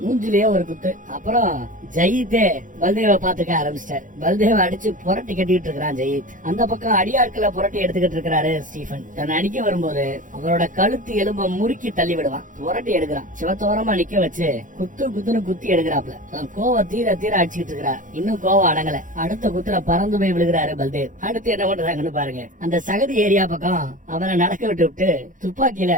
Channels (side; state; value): left; late; 0.38 ms